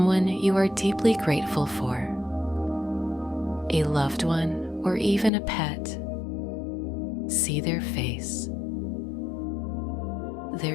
you are deeply grateful for, a loved one or even a pet. See their face,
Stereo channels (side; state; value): right; drops out; at 5.3 s